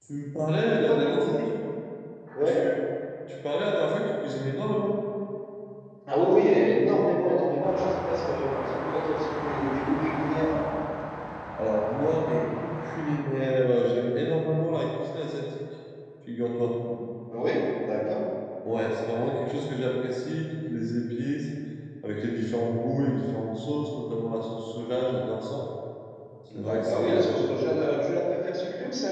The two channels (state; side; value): identical; both; correlation 1.00